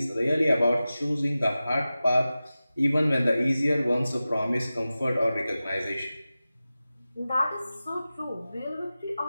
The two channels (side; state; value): both; inverted; correlation -0.95